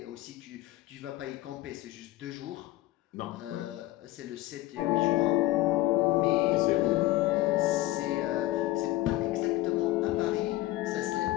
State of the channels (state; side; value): quieter; right; 17.2 dB